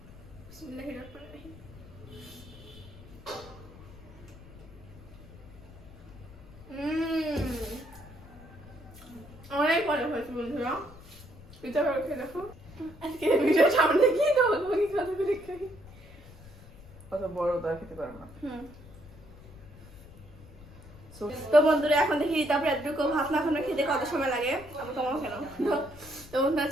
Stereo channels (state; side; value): noise; left; rumble, 19 dB below the sound